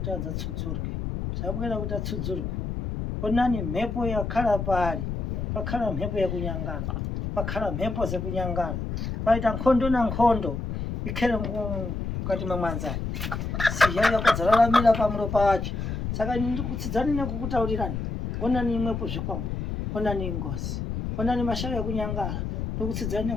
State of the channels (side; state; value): left; noise; rumble, 3 dB below the sound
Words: adzatsudzurwe zvabwera kuti atsudzurwe. Onani mhepo yakhala paari pakhala mhepo yakunyangara pakhala mhepo dzekunyangara paita nkhondo na nkhondo ikhere mukati memwanzari siya yakudzararamira pamulo pacho. Saka ndikutsidzani nekukutaurirani. Onani imwepo zvikwambo onani ngozi onani mashavi ekunyangara ndikutsidzani